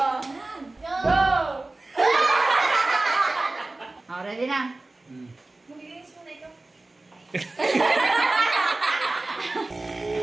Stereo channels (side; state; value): left; quieter; 3.0 dB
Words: Go! Ready na? Magiginis mo na ito.